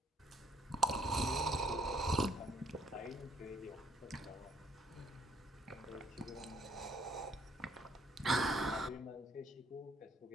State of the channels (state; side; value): normal; both; correlation 0.63